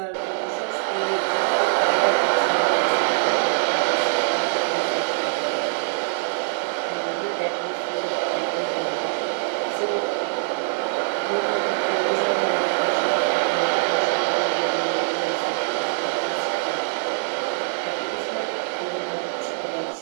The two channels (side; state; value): left; silent; digital silence